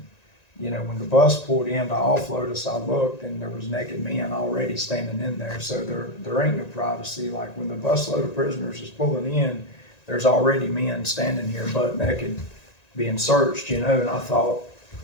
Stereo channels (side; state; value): right; late; 1.9 ms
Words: you know, when the bus pulled in to offload us, I looked, and there was naked men already standing in there. So there ain't no privacy. Like when the busload of prisoners is pulling in, there's already men standing here butt naked being searched, you know. And I thought,